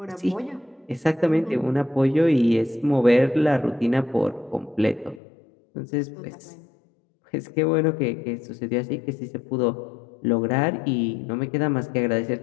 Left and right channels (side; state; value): right; drops out; at 5.2 s